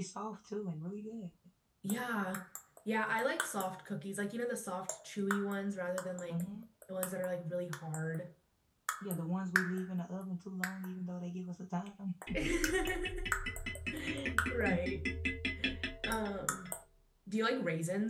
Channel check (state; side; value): identical; both; correlation 1.00